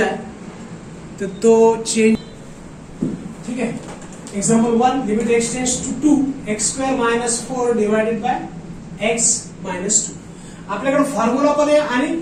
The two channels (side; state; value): both; identical; correlation 1.00